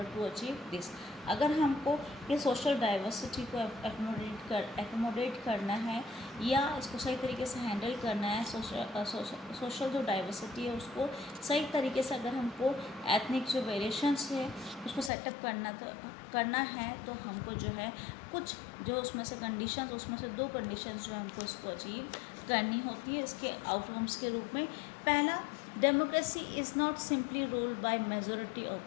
to achieve this. अगर हमको ये सोशल डाइवर्सिटी को एकोमोडेट करना है या इसको सही तरीके से हैंडल करना है, सोशल जो डाइवर्सिटी है उसको सही तरीके से अगर हमको एथनिक जो वेरिएशंस है उसको सेटअप करना है तो हमको जो है कुछ जो उसमें से कंडीशंस, उसमें से 2 कंडीशंस जो हमको उसको अचीव करनी होती है इसके आउटकम्स के रूप में। पहला, democracy is not simply ruled by majority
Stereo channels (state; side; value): drops out; right; at 15.1 s